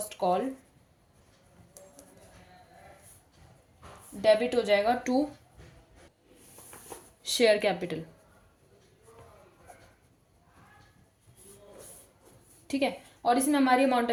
कॉल डेबिट हो जाएगा टू शेयर कैपिटल। ठीक है, और इसमें हमारी अमाउंट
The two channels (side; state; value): both; identical; correlation 1.00